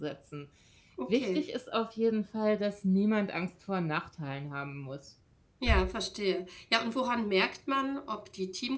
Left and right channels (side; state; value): both; identical; correlation 1.00